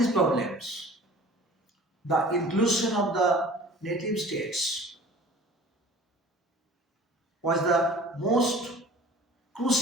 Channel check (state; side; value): normal; both; correlation 0.45